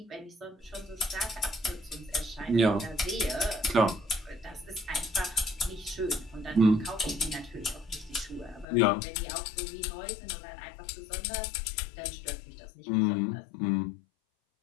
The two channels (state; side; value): drops out; right; at 8.7 s